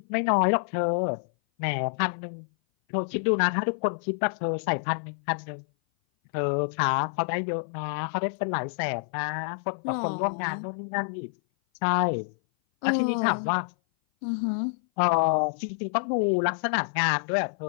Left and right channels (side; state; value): right; silent; 57 dB below the other